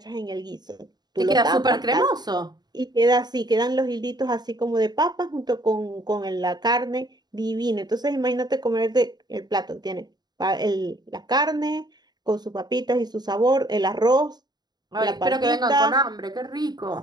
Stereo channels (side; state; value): left; late; 0.20 ms